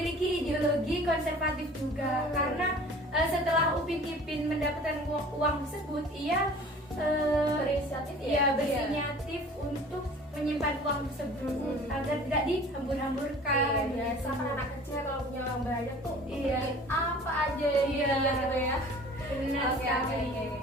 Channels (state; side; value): normal; both; correlation 0.46